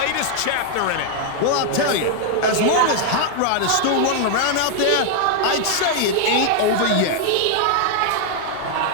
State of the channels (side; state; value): both; different; correlation 0.00